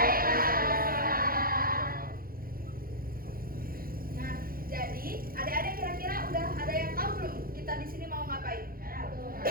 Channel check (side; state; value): left; late; 0.42 ms